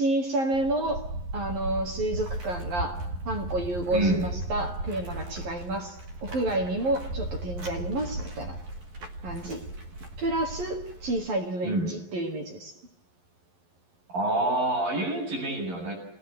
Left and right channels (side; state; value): left; late; 11 ms